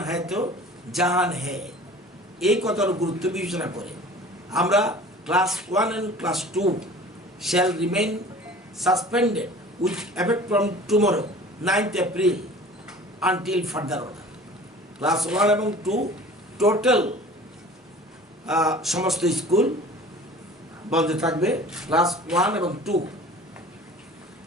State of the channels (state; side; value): normal; both; correlation 0.44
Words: হ্যায় তো জাহান হ্যায়। এই কথার গুরুত্ব বিবেচনা করে আমরা class 1 and class 2 shall remain suspended with effect from tomorrow 9th April until further order. Class 1 এবং 2 টোটাল সমস্ত স্কুল বন্ধ থাকবে। ক্লাস 1 এবং 2